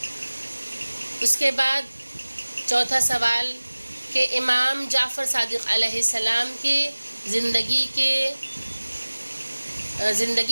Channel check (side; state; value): both; inverted; correlation -1.00